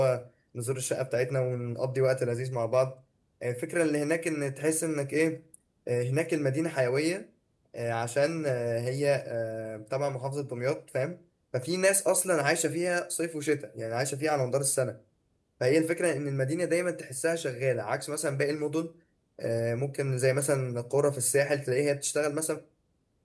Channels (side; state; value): both; identical; correlation 1.00